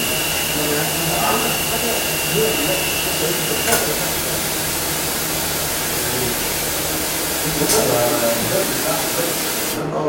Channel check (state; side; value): identical; both; correlation 1.00